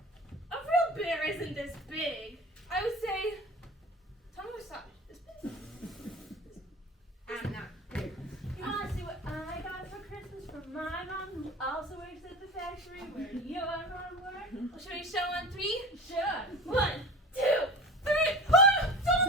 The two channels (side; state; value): both; normal; correlation 0.33